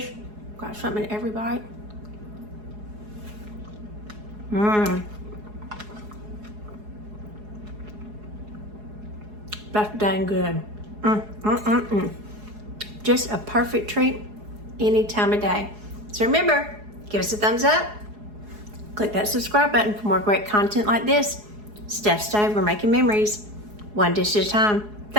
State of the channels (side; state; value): left; late; 4.8 ms